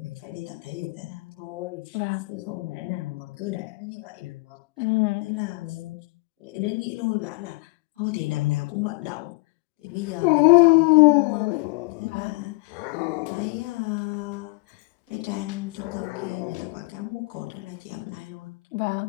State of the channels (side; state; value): right; quieter; 24.3 dB